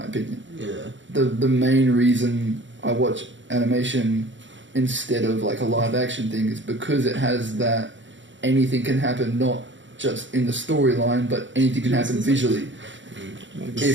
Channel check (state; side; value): late; left; 0.54 ms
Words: opinion. Yeah. The main reason I watch animation instead of like a live action thing is because it has that anything can happen, not just in the storyline, but anything can happen visually.